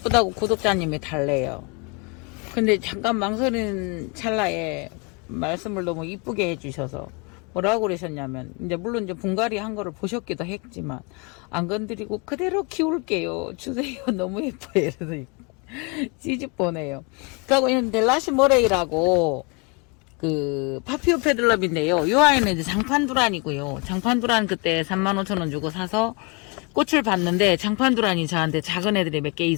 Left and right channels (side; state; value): right; quieter; 31.1 dB